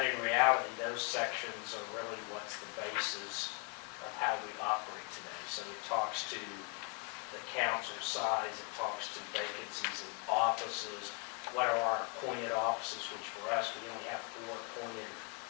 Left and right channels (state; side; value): quieter; right; 32.4 dB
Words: in reality, those sections are really what's the basis of how we operate today. So it talks to the council size, it talks to vacancies in offices, what are our appointed offices, which for us, we only have 4 appointed